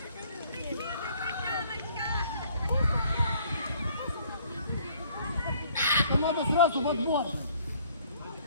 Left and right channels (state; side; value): inverted; both; correlation -0.60